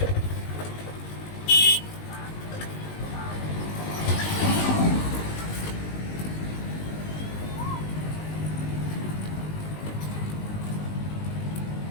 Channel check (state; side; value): late; right; 19 ms